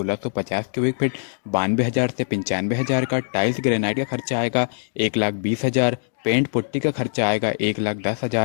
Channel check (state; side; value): silent; right; digital silence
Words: क्यूबिक फीट 92,000 से 95,000 का। टाइल्स ग्रेनाइट का खर्चा आएगा 1,20,000। पेंट पुट्टी का खर्चा आएगा